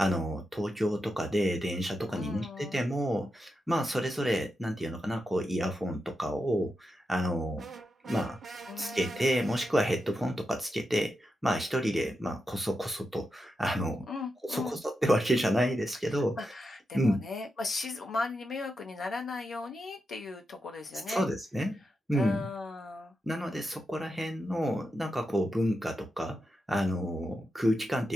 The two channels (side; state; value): both; normal; correlation 0.87